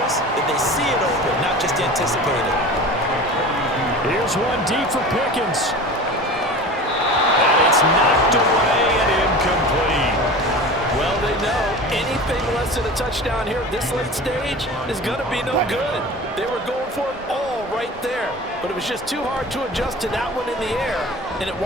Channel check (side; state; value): both; normal; correlation 0.35